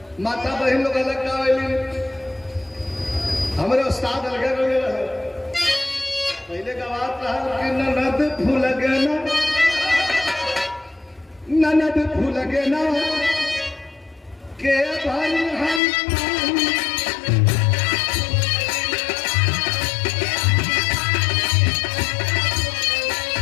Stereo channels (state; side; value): drops out; right; at 15.8 s